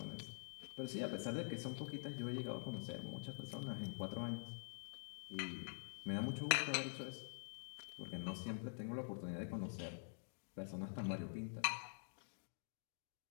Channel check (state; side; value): silent; right; digital silence